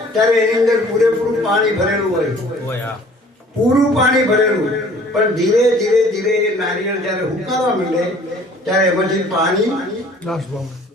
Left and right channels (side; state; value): both; normal; correlation 0.52